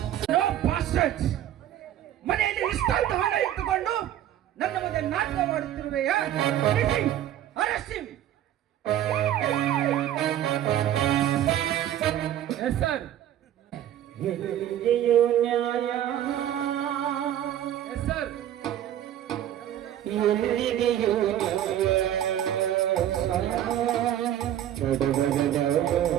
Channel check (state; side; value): quieter; left; 11.6 dB